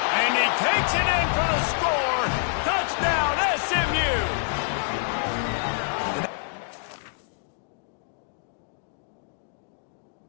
And he takes it in for the score. Touchdown, SMU!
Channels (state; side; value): silent; right; digital silence